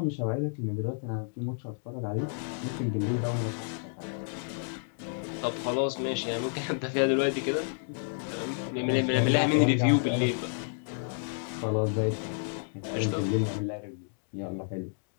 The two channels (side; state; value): right; silent; digital silence